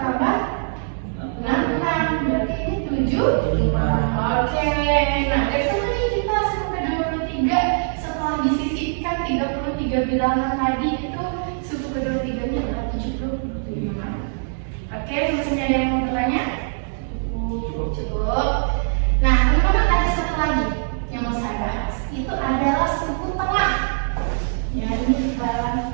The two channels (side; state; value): left; silent; digital silence